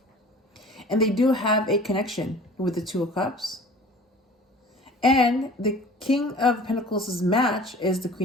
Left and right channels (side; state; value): both; normal; correlation 0.45